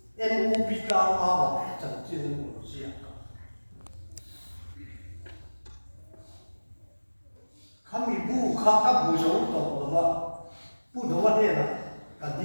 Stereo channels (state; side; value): inverted; both; correlation -1.00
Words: NUP tahu apa, jangan manusia. Kami buka kamu jauh tahu apa, pudo mana lah.